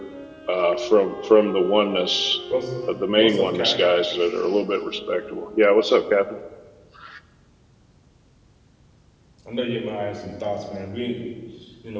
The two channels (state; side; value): identical; both; correlation 1.00